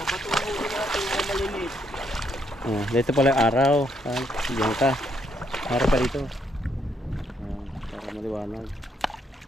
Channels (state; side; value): normal; both; correlation 0.73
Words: bato na huli natin na maliliit. Oh, dito pala yung araw. Diyan ka. Araw pa dito. Para maliwanag.